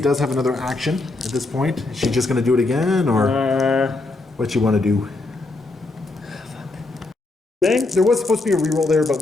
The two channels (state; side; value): quieter; right; 3.2 dB